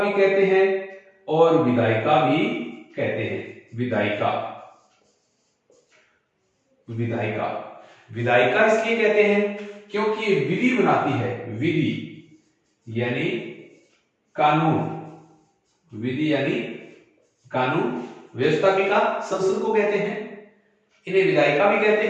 कहते हैं और विधायिका भी कहते हैं। विधायिका विधायिका विधायिका इसलिए कहते हैं क्योंकि ये विधि बनाती है। विधि यानी कानून, विधि यानी कानून। व्यवस्थापिका संसद को कहते हैं, इन्हें विधायिका भी कहते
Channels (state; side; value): identical; both; correlation 1.00